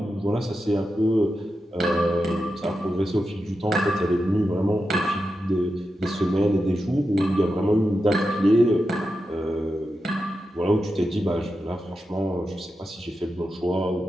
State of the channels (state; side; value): normal; both; correlation 0.89